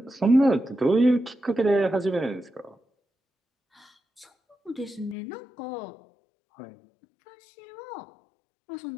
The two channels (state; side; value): drops out; right; at 5.2 s